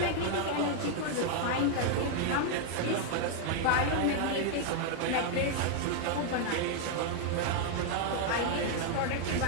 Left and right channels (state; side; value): different; both; correlation 0.00